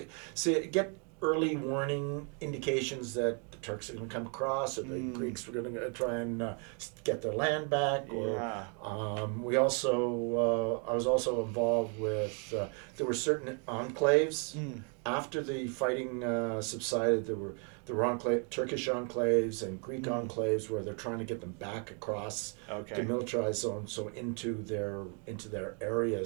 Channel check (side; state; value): left; quieter; 38.4 dB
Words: get early warning indications that the Turks are going to come across, or the Greeks were going to try and get their land back. Or we also, I was also involved with. There were certain enclaves after the fighting subsided. There were Turkish enclaves and Greek enclaves where they're trying to get them back across the demilitarized zone, so into their